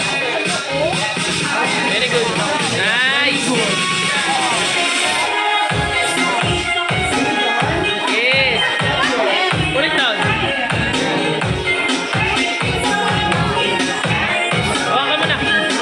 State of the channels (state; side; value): identical; both; correlation 1.00